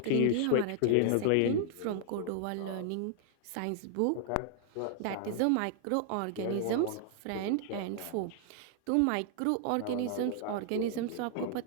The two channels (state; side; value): different; both; correlation -0.01